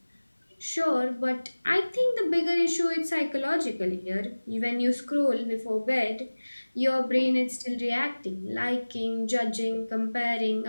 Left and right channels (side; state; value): both; inverted; correlation -1.00